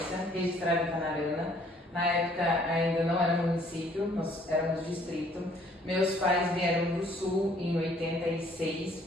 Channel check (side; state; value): both; normal; correlation 0.61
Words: registrada em Canarana. Na época ainda não era município, nós éramos distrito. Meus pais vieram do sul em